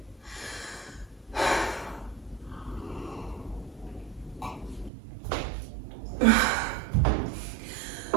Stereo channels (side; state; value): left; drops out; at 4.9 s